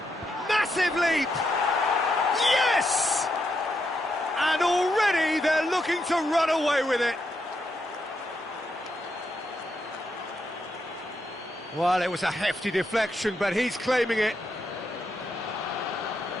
Massive leap! Yes! And already they're looking to run away with it. Well, it was a hefty deflection, but he's claiming it.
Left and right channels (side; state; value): both; normal; correlation 0.81